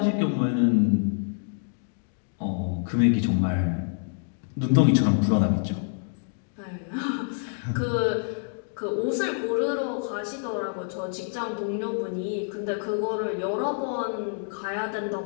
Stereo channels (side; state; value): right; silent; digital silence